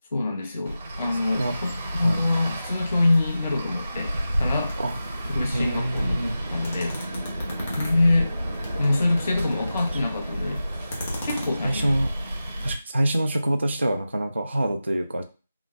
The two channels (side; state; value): both; inverted; correlation -0.93